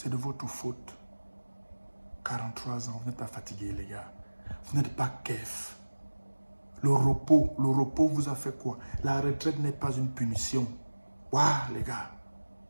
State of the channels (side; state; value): both; inverted; correlation -1.00